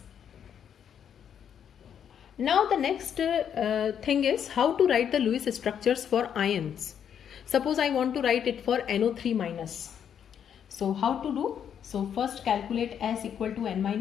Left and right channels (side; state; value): right; quieter; 8.5 dB